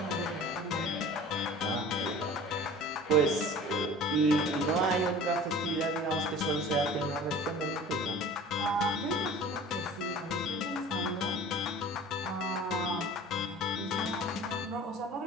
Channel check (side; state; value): both; normal; correlation 0.41